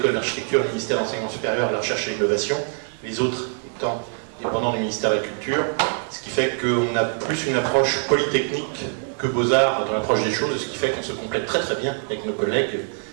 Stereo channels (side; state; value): left; silent; 63 dB below the other